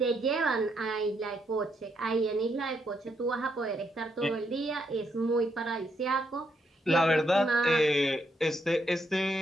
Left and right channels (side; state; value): both; normal; correlation 0.77